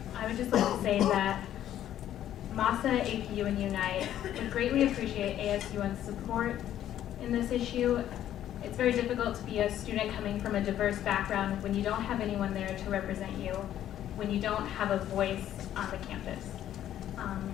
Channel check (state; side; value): quieter; right; 11.6 dB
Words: I would just like to say that MASA, APU, and Unite would greatly appreciate ASUN's support in this issue. It's very difficult to be a student coming from a diverse background when you don't have anyone there to represent you, when you don't have a voice on the campus.